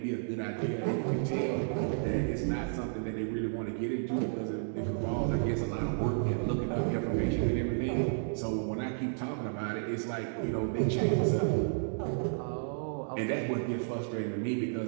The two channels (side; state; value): left; silent; digital silence